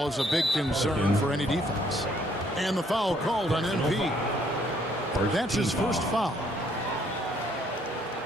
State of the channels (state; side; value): normal; both; correlation 0.66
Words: is a big concern for any defense. And the foul called on MP. That's his first foul.